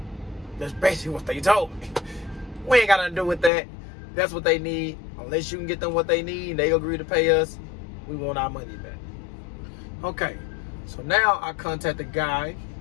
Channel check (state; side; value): drops out; right; at 3.5 s